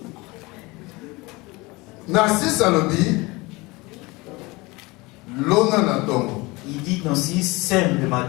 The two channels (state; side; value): quieter; right; 23.6 dB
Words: Il dit dans 6, sème le